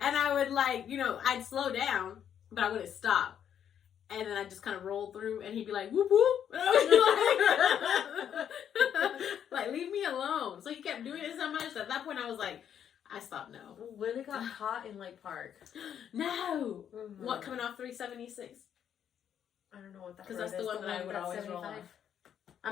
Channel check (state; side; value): quieter; right; 9.1 dB